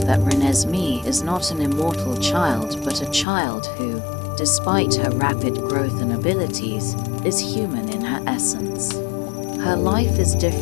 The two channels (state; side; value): drops out; right; at 3.2 s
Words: Renesmee is not an immortal child, but a child who, despite her rapid growth and abilities, is human in her essence. Her life is